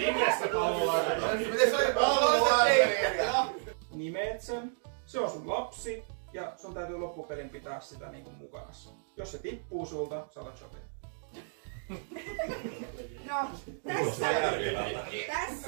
se oli pallolla? Nimeet sen. Se on sun lapsi. Ja sun täytyy loppupelin pitää sitä niinku mukana. Jos se tippuu sulta, sä alat shopia. No,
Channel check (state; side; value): silent; left; digital silence